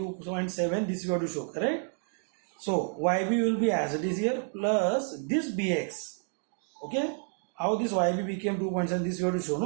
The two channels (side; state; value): left; silent; 58 dB below the other